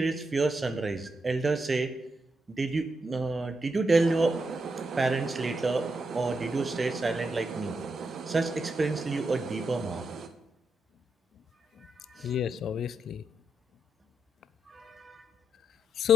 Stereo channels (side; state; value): both; normal; correlation 0.82